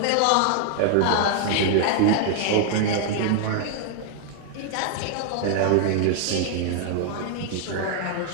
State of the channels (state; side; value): different; both; correlation 0.00